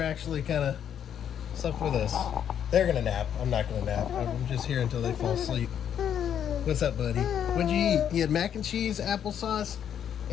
actually kind of slept with us. They're gonna nap. I'm not gonna nap. I'm just here until they fall asleep. What's up, buddy? What'd you eat? You had mac and cheese, applesauce,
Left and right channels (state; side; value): quieter; right; 9.1 dB